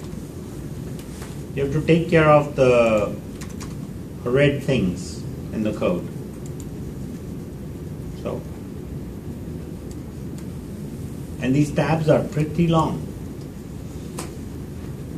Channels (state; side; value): identical; both; correlation 1.00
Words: You have to take care of the red things in the code. So, and these tabs are pretty long.